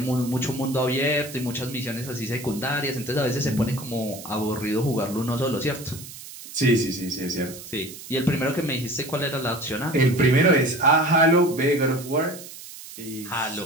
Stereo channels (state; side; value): noise; right; hiss, 14 dB below the sound